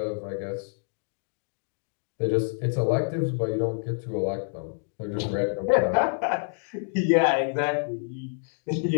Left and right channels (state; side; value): silent; right; 60 dB below the other